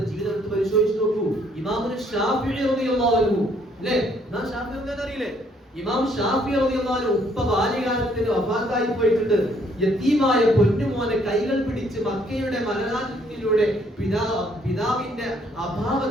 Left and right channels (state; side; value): normal; both; correlation 0.66